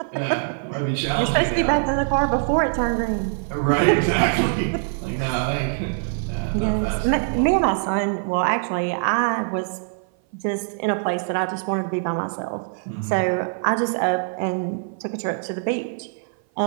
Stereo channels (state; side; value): silent; left; 57 dB below the other